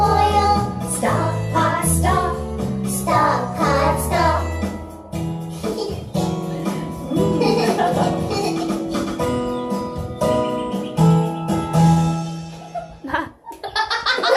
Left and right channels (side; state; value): both; identical; correlation 1.00